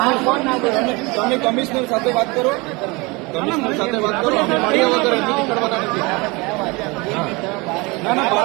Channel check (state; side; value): quieter; left; 25.9 dB